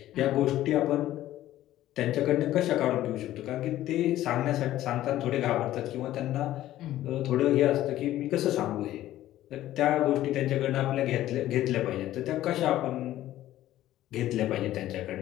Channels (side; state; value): right; quieter; 14.0 dB